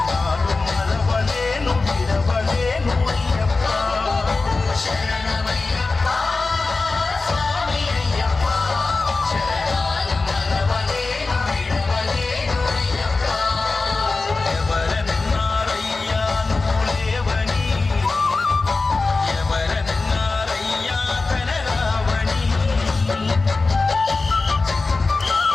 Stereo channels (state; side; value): quieter; right; 3.7 dB